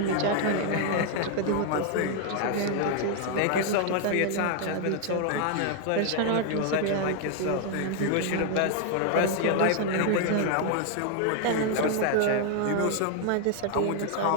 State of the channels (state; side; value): different; both; correlation 0.00